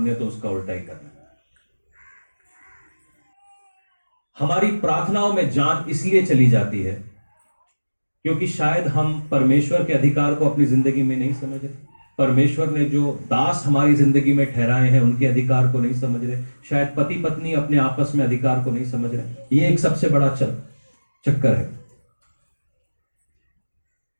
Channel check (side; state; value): both; inverted; correlation -1.00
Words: तो उसका उल्टा ही करना है। हमारी प्रार्थनाओं में जान इसलिए चली जाती है क्योंकि शायद हम परमेश्वर के अधिकार को अपनी जिंदगी में नहीं समझ रहे। परमेश्वर ने जो दास हमारी जिंदगी में ठहराए हैं उनके अधिकार को नहीं समझ रहे। शायद पति पत्नी अपने आपस में अधिकार को नहीं समझ रहे। ये एक सबसे बड़ा चक्कर है।